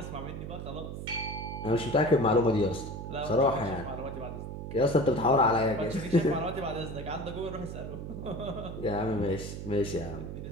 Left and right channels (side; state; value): right; noise; hum, 7 dB below the sound